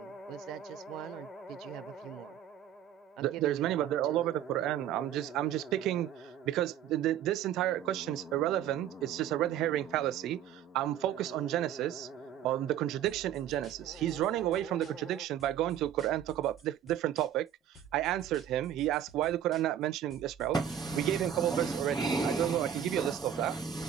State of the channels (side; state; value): left; quieter; 10.3 dB